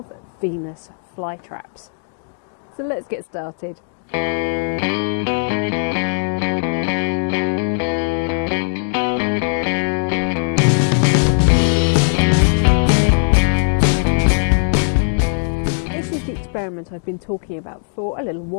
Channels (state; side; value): silent; right; digital silence